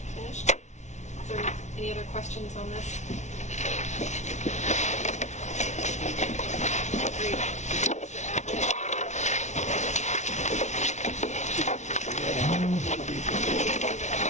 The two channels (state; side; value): late; right; 0.33 ms